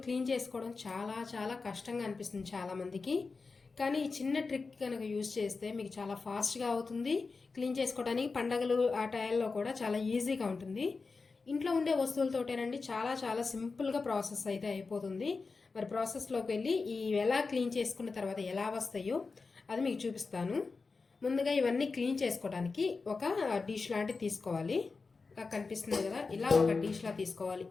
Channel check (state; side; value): quieter; right; 4.3 dB